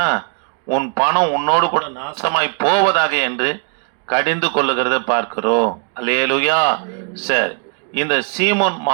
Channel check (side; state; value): left; quieter; 39.2 dB